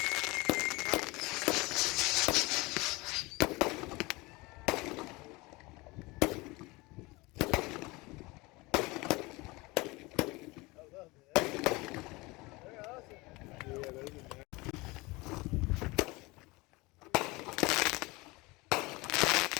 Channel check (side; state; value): right; quieter; 23.5 dB